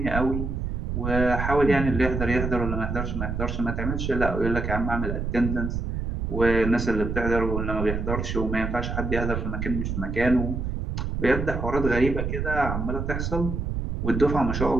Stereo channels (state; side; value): noise; right; rumble, 3 dB below the sound